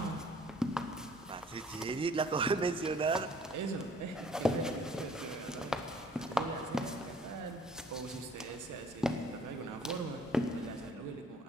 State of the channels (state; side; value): normal; both; correlation 0.56